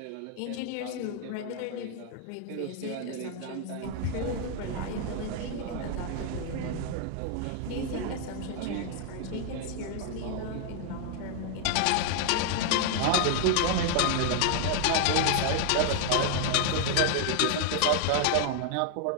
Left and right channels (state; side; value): different; both; correlation 0.00